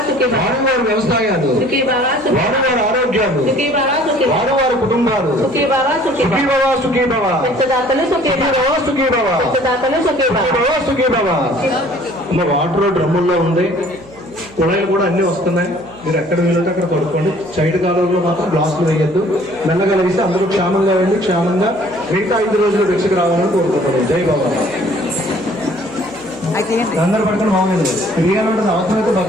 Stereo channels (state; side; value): noise; right; hum, 22 dB below the sound